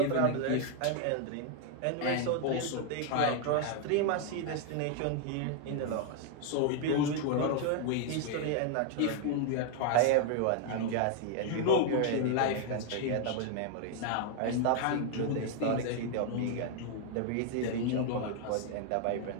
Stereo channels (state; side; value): different; both; correlation 0.00